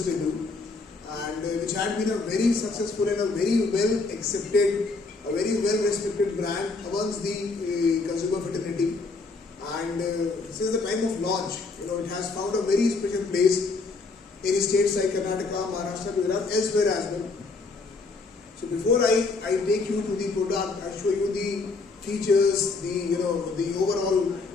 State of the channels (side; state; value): right; quieter; 3.9 dB